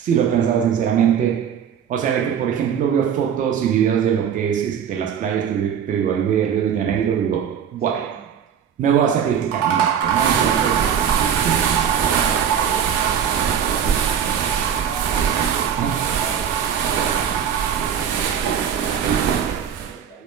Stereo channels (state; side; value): quieter; left; 8.3 dB